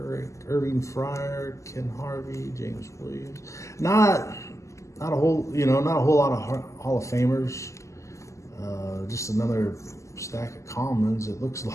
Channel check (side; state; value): right; late; 0.15 ms